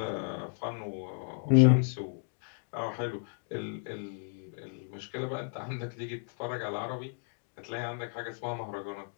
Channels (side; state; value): right; silent; digital silence